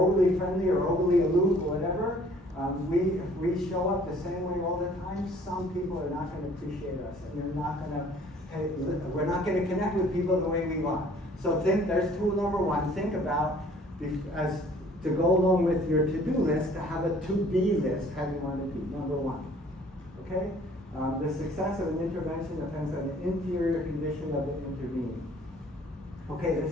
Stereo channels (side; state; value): both; normal; correlation 0.55